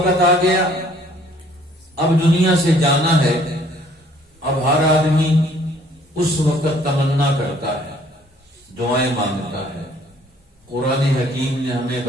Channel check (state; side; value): normal; both; correlation 0.59